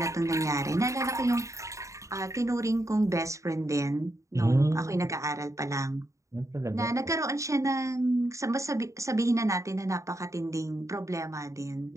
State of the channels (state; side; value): late; left; 0.15 ms